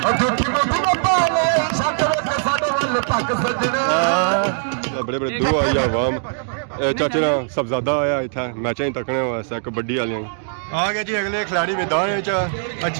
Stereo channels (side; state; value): left; silent; digital silence